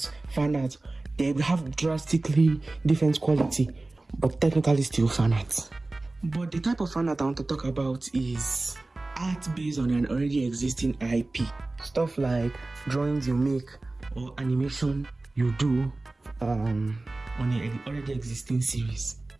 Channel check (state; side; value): quieter; left; 3.0 dB